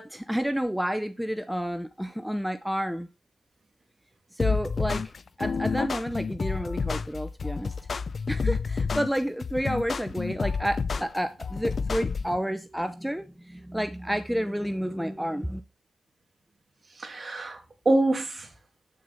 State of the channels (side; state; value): both; normal; correlation 0.95